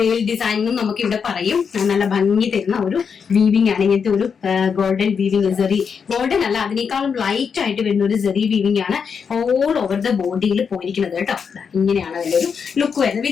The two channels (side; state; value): right; quieter; 6.4 dB